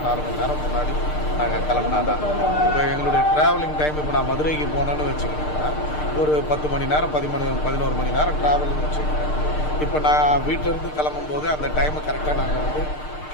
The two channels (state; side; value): late; right; 6.6 ms